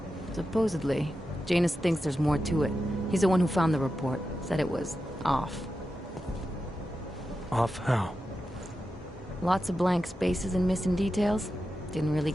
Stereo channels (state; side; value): normal; both; correlation 0.90